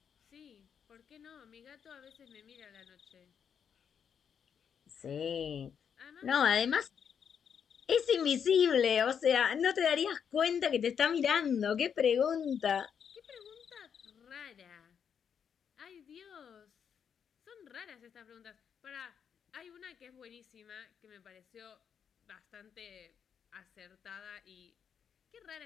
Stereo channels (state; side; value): quieter; right; 7.6 dB